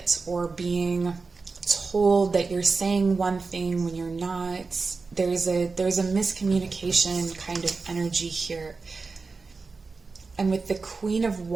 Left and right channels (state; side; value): quieter; left; 4.3 dB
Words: or being told that you're saying one thing when you're not. There's a miscommunication kind of energy here. And with the Queen of